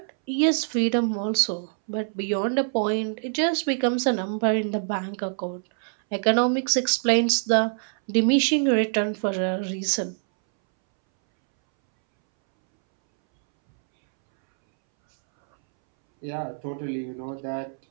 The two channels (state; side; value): silent; left; 62 dB below the other